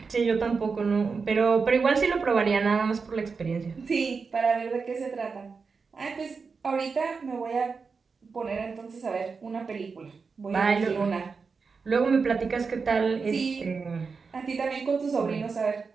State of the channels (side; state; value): left; quieter; 5.0 dB